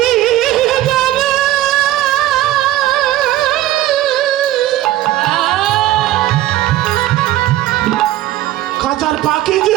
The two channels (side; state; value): left; quieter; 14.7 dB